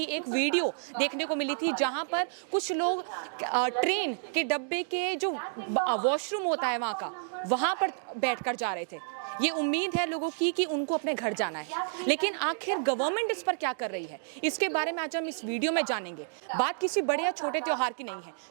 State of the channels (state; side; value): silent; left; digital silence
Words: एक वीडियो देखने को मिली थी जहां पर कुछ लोग ट्रेन के डब्बे के जो वॉशरूम होता है वहां पर बैठकर जा रहे थे। ये उम्मीद है लोगों की कि उनको अपने घर जाना है, लेकिन आखिर गवर्नमेंट इस पर क्या कर रही है, इसके बारे में आज हम इस वीडियो में जानेंगे। बात किसी बड़े या छोटे त्योहार की नहीं है।